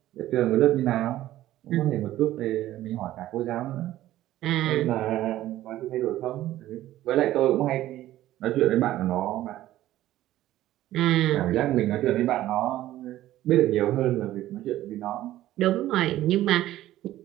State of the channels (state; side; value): quieter; left; 14.3 dB